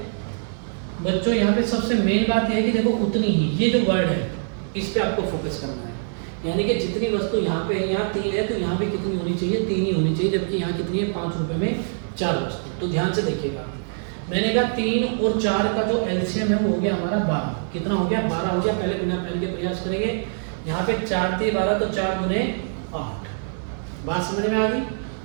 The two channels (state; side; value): silent; left; 63 dB below the other